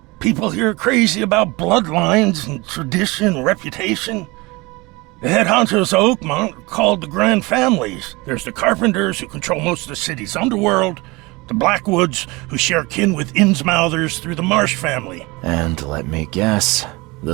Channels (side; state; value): left; quieter; 24.1 dB